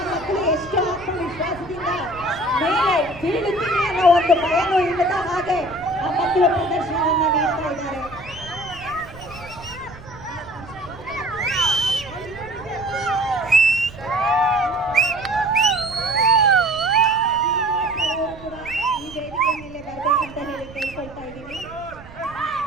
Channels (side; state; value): right; noise; rumble, 18 dB below the sound